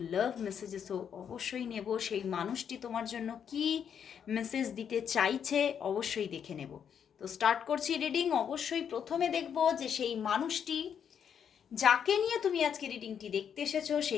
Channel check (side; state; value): right; quieter; 8.0 dB